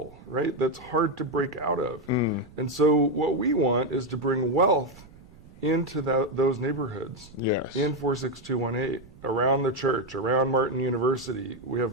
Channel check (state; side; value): noise; right; rumble, 22 dB below the sound